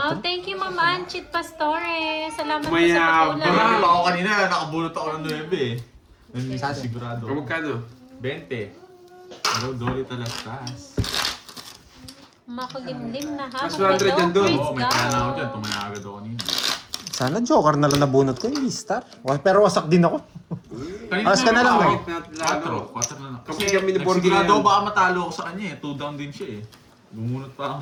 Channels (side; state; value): both; identical; correlation 1.00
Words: 4. thank you, Ma'am Anchit Pastore. Salamat po sa Mayabang. pag-ulan. Ako kanina, nakabulot ako ng 9 eh. Sigurado. O magkano? 20. Hello, Dolly Talastas. Makulimlim na ha. Mas 100 yan doon. Oo, may pala ako dyan. Tumaya agad ako kanina. Sana joker na lang nabunot ko, hindi star. Pero wasak din ako. Alas ka na lang, Bakit eh. natin lalo? 4 na lang. Kami Kasi kami ni Borgie nagsigurado yan. ako baka matalo ako sa kanya eh. 2 down din siya eh. Bumunot pa ako